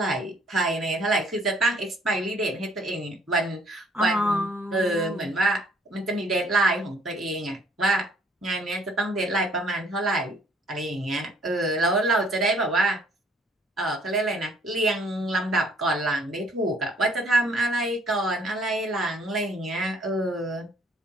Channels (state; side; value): normal; both; correlation 0.61